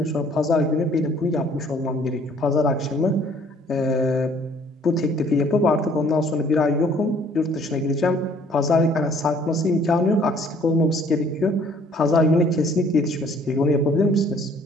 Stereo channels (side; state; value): both; normal; correlation 0.58